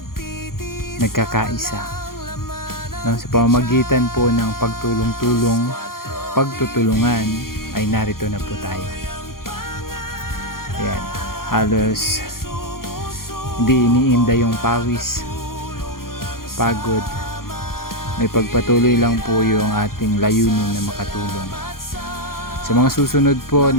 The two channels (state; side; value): late; right; 0.92 ms